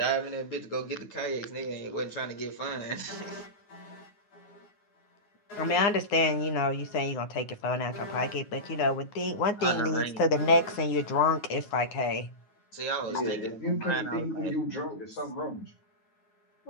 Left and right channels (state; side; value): late; right; 9.5 ms